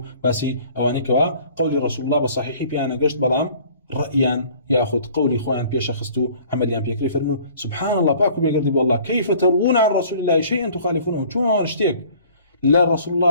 باسي اواني كوا قول رسول الله بصحيح بيانا قشت بلام رأيا ياخذ قولي خوان بيش خستو عمليا بيكري فرموا سبحان الله باكو بيقردي والله كيف تروون عن رسول الله شيئا تخالفونه شلون اشتيك لا رسول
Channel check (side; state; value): both; inverted; correlation -0.52